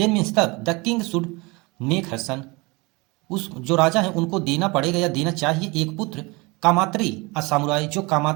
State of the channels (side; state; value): left; quieter; 25.6 dB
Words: मीन्स तब, the king should make her son, उस जो राजा है उनको देना पड़ेगा या देना चाहिए एक पुत्र, कामात्री अ सामुराई, जो